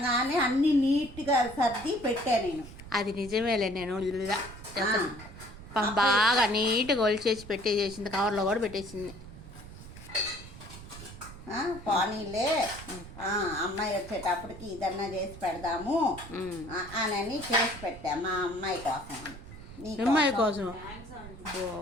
అన్ని నీట్గా సర్ది పెట్టా నేను. అది నిజమేలే. నేను బాగా నీట్గా ఒలిచేసి పెట్టేసేసింది. కవర్లో కూడా పెట్టేసింది. పోనీలే అమ్మాయి వచ్చేటప్పటికి ఇదన్నా చేసి పెడదాము అని చేసి పెట్టా మా అమ్మాయి కోసం. అమ్మాయి కోసం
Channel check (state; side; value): noise; right; rumble, 15 dB below the sound